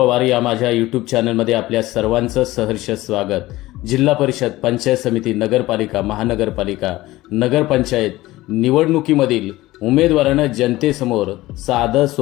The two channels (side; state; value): right; quieter; 17.8 dB